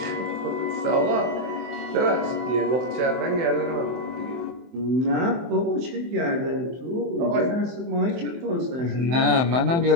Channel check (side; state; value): left; late; 23 ms